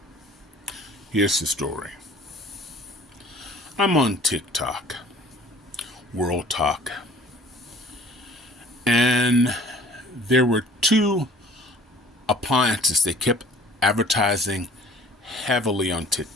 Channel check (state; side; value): normal; both; correlation 0.51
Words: Here's the story. I'm on Tic Toc, World Talk, and there were two appliances they kept advertising heavily on